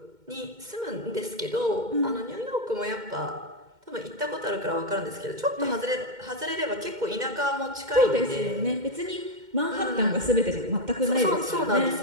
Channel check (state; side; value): late; left; 2.1 ms